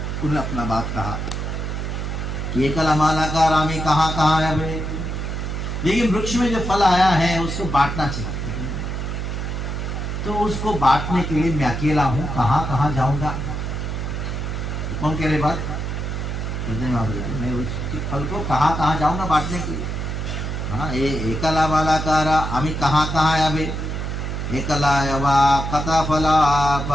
उन्होंने अपना बात कहा, ये कलामाला का रामी कहाँ कहाँ है भाई। लेकिन वृक्ष में जो फल आया है उसको बांटना चाहिए। तो उसको बांटने के लिए मैं अकेला हूं, कहाँ कहाँ जाऊंगा? तो कौन कह रहे बात? मैं उसके फल को कहाँ कहाँ जाऊंगा बांटने के लिए? हाँ, ये एकला मालाकारा आमी कहाँ कहाँ आवे, एकला यवा कथा फला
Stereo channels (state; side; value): noise; right; hum, 3 dB below the sound